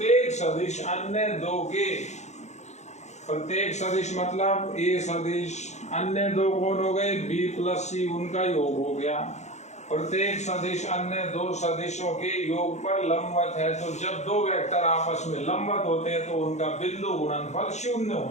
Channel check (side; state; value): right; late; 0.33 ms